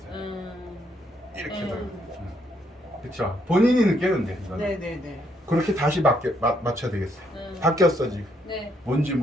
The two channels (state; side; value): normal; both; correlation 0.73